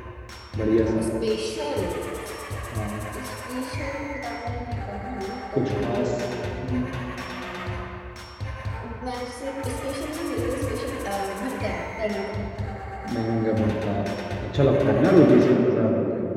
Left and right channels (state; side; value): identical; both; correlation 1.00